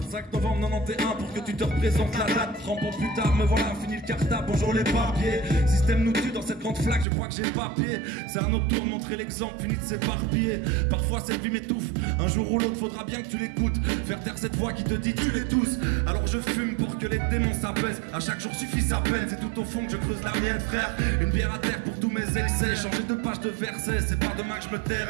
novembre 91 pour que tu te représentes la date. 30 ans plus tard, me voilà, fini le cartable, bonjour les papiers. Système nous tue dans cette grande flaque, je crois que j'ai papier. C'est un autre tour, montrer l'exemple, fini de s'éparpiller. Parfois cette vie m'étouffe, un jour ou l'autre faudra bien que tu l'écoutes. Faire taire cette voix qui te dit tu les tous. Alors je fume pour que les démons s'apaisent. À chaque jour suffit sa peine, c'est tout au fond que je creuse la mienne frère. Une bière à terre pour tous mes excès. Changer de page de verset, c'est pas demain que je me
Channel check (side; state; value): left; drops out; at 7.1 s